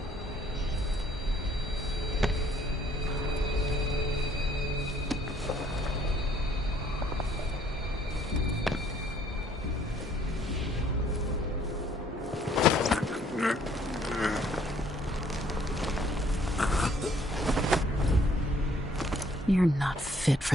You're not fit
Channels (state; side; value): normal; both; correlation 0.62